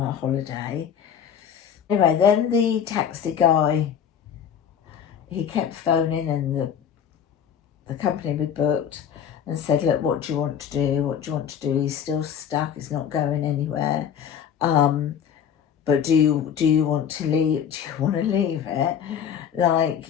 holiday. Anyway, then the taxi guy, he kept phoning, and the company we booked, and said, look, what do you want to do? He's still stuck, he's not going anywhere. But do you want to leave? Do you want to leave it?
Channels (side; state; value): right; quieter; 8.3 dB